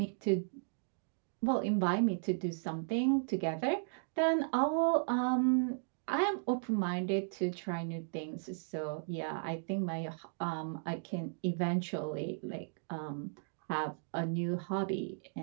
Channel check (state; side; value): silent; left; digital silence